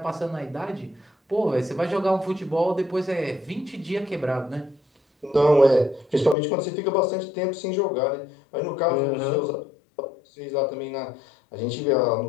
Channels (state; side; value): drops out; right; at 6.4 s